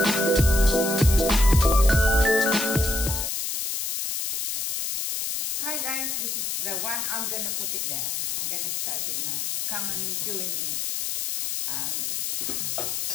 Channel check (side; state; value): left; noise; hiss, 2 dB below the sound